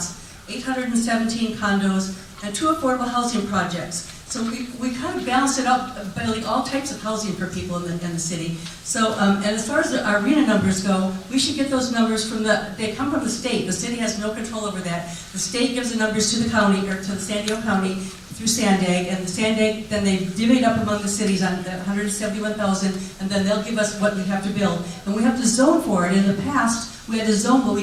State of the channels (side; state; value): both; identical; correlation 1.00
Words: 817 condos, and 2 affordable housing projects. So we kind of balanced it out, building all types of housing for people in the city. So, and as far as our RHINA numbers go, we should get those numbers they come from the state. The city has no control over that. The state gives the numbers to the county, or to the San Diego County, through Sandag, and the Sandag, then they divvy it up among the cities on the 171,000, and then they'll give us what we have to build. And we have to zone for it. In the past, we had to zone, but we